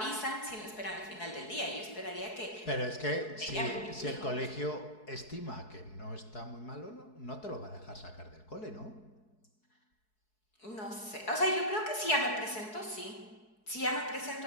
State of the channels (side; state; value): right; late; 4.7 ms